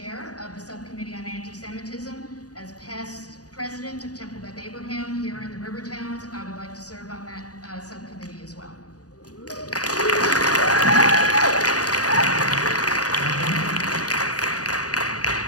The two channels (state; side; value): late; right; 0.67 ms